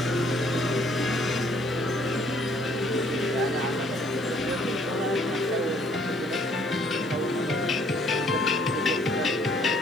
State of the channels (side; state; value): left; noise; hiss, 29 dB below the sound